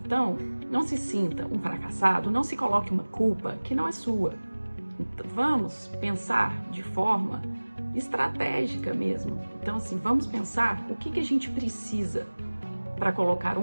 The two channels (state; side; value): inverted; both; correlation -1.00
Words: não se sinta um fracassado, não se coloque uma culpa que não é sua. Então, vamos pensar de forma estratégica mesmo. Então, assim, vamos pensar o que a gente precisa para colocar